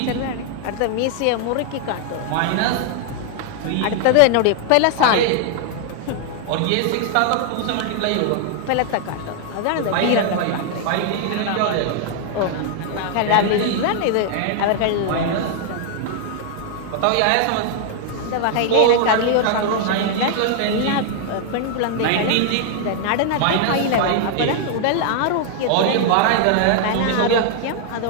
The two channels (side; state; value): both; different; correlation 0.00